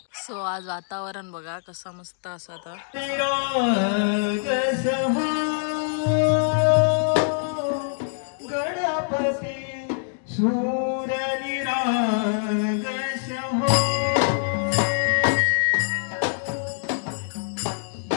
सो आज वातावरण बघा कसं मस्त असं आता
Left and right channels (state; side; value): silent; right; digital silence